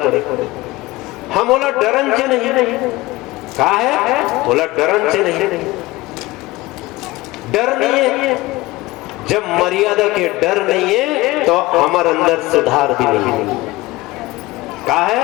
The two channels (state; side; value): quieter; right; 20.0 dB